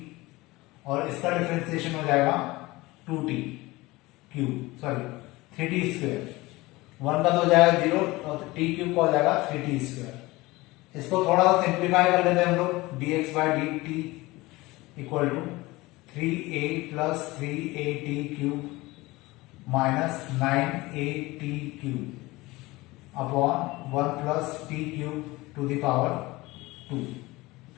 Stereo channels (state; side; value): quieter; right; 20.8 dB